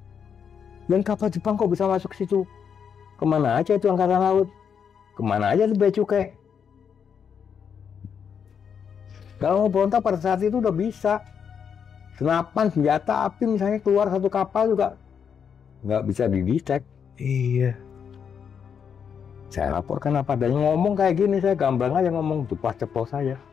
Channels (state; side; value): quieter; right; 7.2 dB